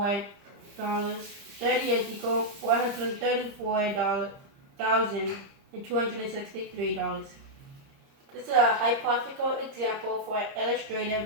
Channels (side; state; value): left; late; 30 ms